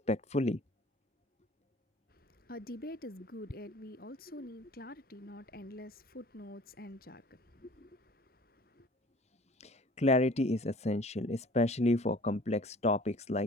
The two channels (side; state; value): both; normal; correlation 0.48